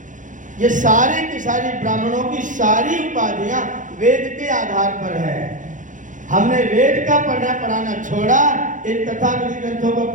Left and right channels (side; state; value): left; late; 0.37 ms